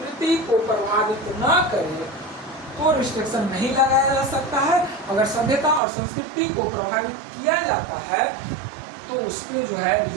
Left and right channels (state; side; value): drops out; left; at 5.8 s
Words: को प्रभावित न करे तो रिस्ट्रिक्शन नहीं लगाया जा सकता है। अगर सभ्यता और संस्कृति को प्रभावित किया जाता है तो उस पर जो है